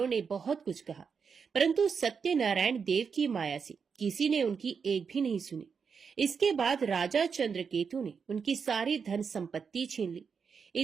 ने बहुत कुछ कहा, परंतु सत्यनारायण देव की माया से किसी ने उनकी एक भी नहीं सुनी। इसके बाद राजा चंद्रकेतु ने उनकी सारी धन संपत्ति छीन ली।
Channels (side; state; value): left; quieter; 6.0 dB